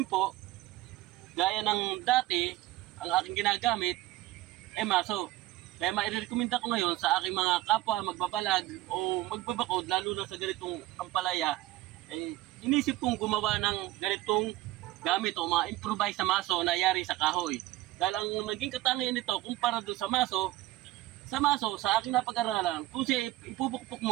po, gaya ng dati, ang aking ginagamit ay maso. Kaya mairekomenda ko ngayon sa aking mga kapwa magbabalag o magbabakod, lalo na sa ganitong ampalaya, inisip kong gumawa ng ganitong gamit o mga improvised na maso na yari sa kahoy. Dahil ang naging katangian nito, kumpara doon sa maso, sa aking napag-aralan, kung siya ipupukpok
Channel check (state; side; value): quieter; left; 16.7 dB